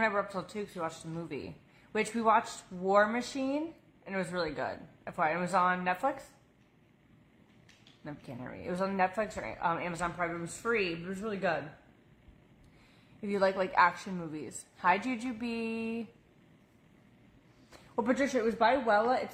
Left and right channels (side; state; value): both; identical; correlation 1.00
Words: I were up till 2 because we watched a movie, which we watched War Machine, and it was really good. FYI, it was on Netflix. No, you can't hear me. It was on Netflix or Amazon Prime. It was free, but it was really good. If you like action movies. Hi, Juju B. Well, Patricia, it was by Wella. It's